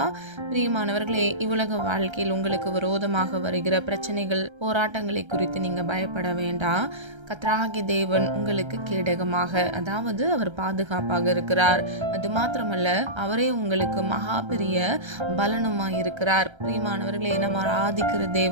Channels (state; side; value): late; left; 1.3 ms